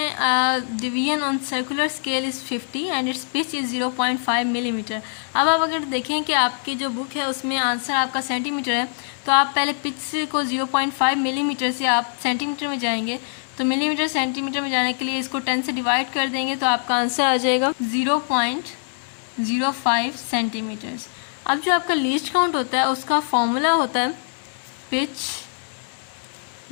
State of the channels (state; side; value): silent; right; digital silence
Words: division on circular scale is 50 and it's pitch is 0.5 millimetre. अब आप अगर देखें कि आपकी जो बुक है उसमें आंसर आपका सेंटीमीटर है, तो आप पहले पिच को 0.5 मिलीमीटर से आप सेंटीमीटर में जाएंगे, तो मिलीमीटर सेंटीमीटर में जाने के लिए इसको 10 से डिवाइड कर देंगे तो आपका आंसर आ जाएगा 0.05 सेंटीमीटर्स। अब जो आपका लीस्ट काउंट होता है उसका फॉर्मूला होता है pitch